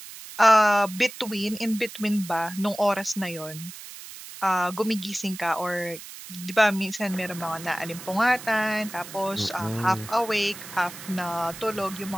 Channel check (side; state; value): right; noise; hiss, 14 dB below the sound